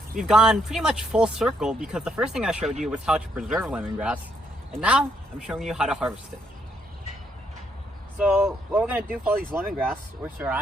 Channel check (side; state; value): both; normal; correlation 0.74